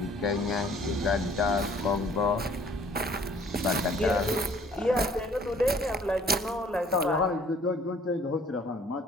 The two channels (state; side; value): normal; both; correlation 0.57